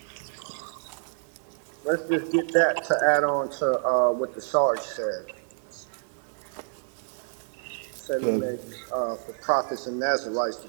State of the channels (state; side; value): silent; left; digital silence